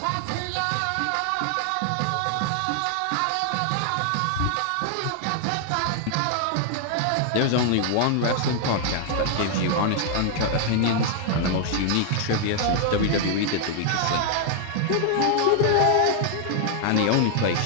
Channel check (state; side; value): different; both; correlation 0.00